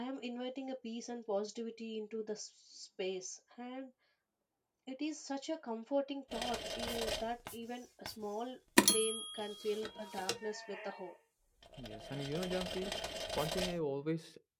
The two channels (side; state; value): both; identical; correlation 1.00